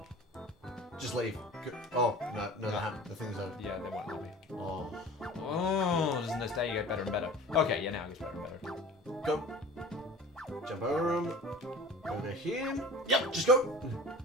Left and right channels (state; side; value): normal; both; correlation 0.40